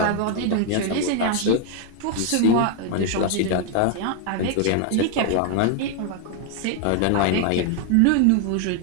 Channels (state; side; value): different; both; correlation 0.00